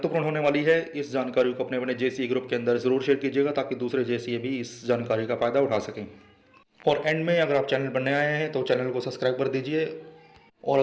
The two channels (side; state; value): both; identical; correlation 1.00